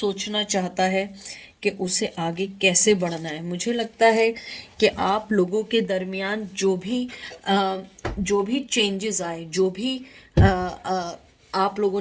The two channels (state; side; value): identical; both; correlation 1.00